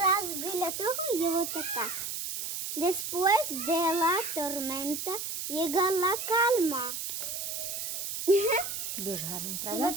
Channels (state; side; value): noise; right; hiss, 4 dB below the sound